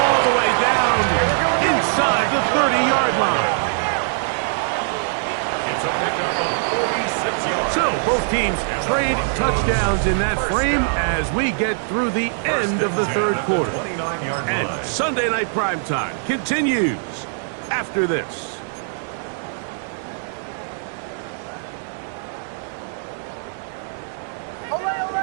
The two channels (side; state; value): left; silent; digital silence